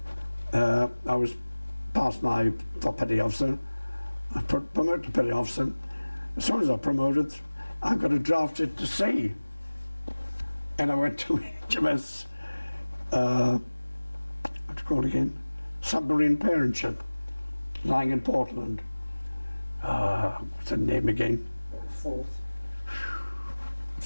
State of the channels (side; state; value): both; inverted; correlation -1.00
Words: I was past for petty officer. I promoted to petty officer. As soon as I promoted, I got a drafted to sea. And I went to HMS, what's it called again? Submarine Parentship, lying in Portland. What's the name again? Fourth.